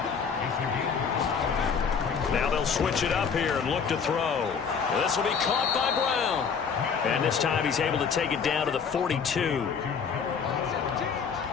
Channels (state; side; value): quieter; right; 6.2 dB